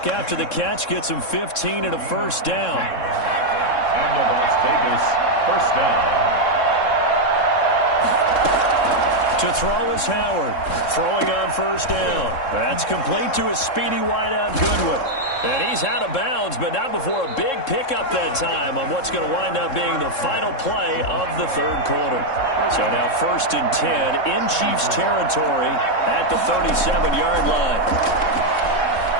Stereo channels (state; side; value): late; right; 3.7 ms